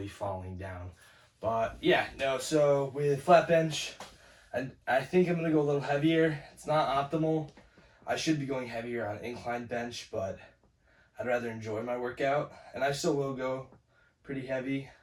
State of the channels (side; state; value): both; identical; correlation 1.00